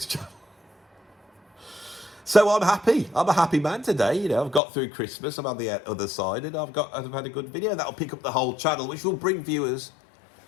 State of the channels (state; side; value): drops out; right; at 4.6 s